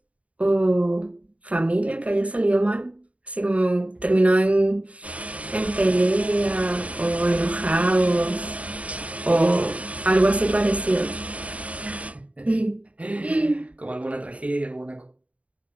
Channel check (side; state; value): left; late; 0.066 ms